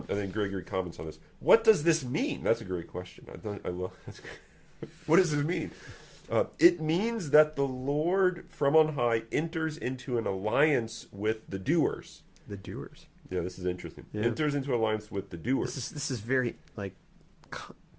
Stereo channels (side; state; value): both; identical; correlation 1.00